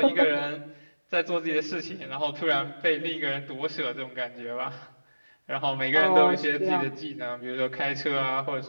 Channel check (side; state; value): both; inverted; correlation -1.00